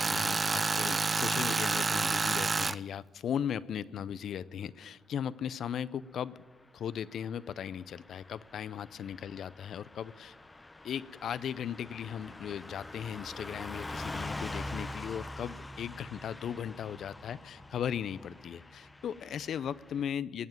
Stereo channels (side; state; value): both; normal; correlation 0.79